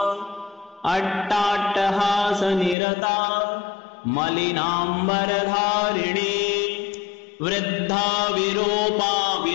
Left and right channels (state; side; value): drops out; right; at 2.8 s